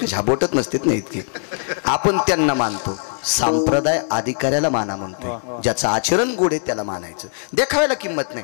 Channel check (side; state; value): right; silent; digital silence